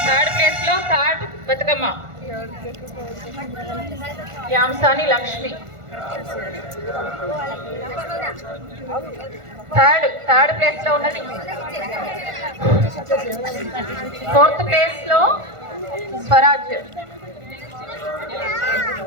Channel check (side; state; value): left; late; 1.5 ms